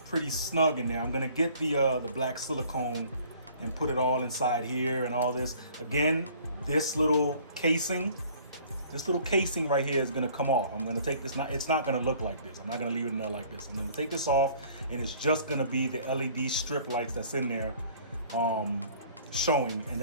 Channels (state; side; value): inverted; both; correlation -0.54